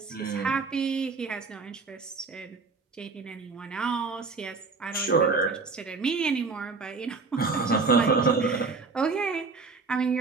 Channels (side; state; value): left; quieter; 4.3 dB